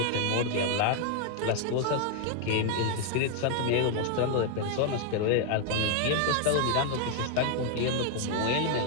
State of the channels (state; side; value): different; both; correlation 0.00